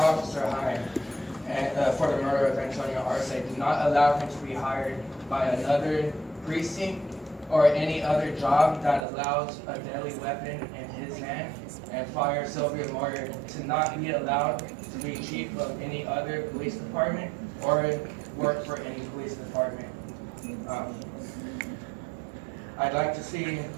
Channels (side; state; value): left; drops out; at 9.1 s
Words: Hine, for the murder of Antonio Arce, do not allow him to be hired by another precinct or any other job that allows a deadly weapon in his hand, and fire Sylvia Moyer to not be allowed to be chief of any other police department or work for any police department. I'd like to see